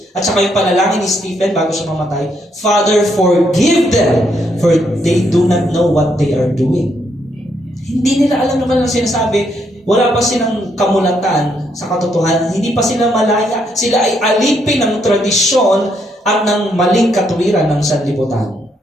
at saka yung panalangin ni Stephen bago siya mamatay, Father, forgive them, for they do not know what they are doing. Hindi nila alam naman ang sinasabi. Wala pa silang kamulatan sa katotohanan. Hindi pa sila malaya. Sila ay alipin ng tradisyon at ng maling katuwiran ng sanlibutan.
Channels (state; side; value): normal; both; correlation 0.74